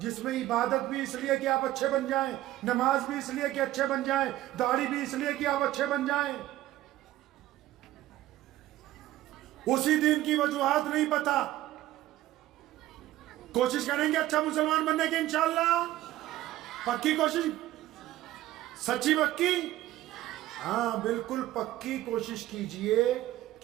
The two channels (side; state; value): left; quieter; 15.0 dB